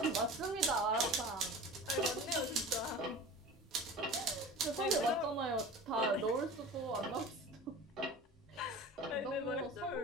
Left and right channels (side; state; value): both; normal; correlation 0.37